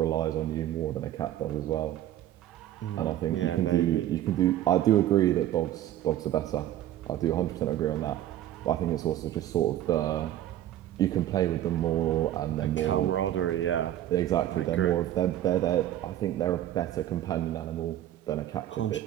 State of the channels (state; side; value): quieter; left; 12.6 dB